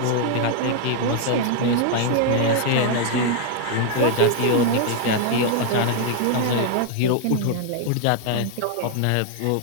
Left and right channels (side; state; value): both; different; correlation 0.00